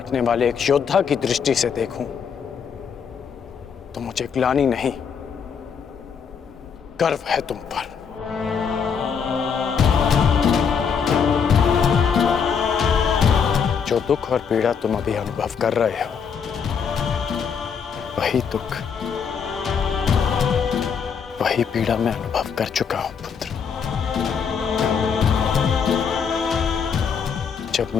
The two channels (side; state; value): right; quieter; 6.6 dB